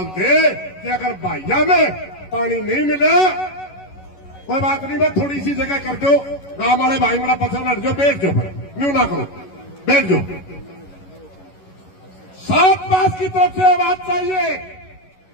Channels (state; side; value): late; right; 11 ms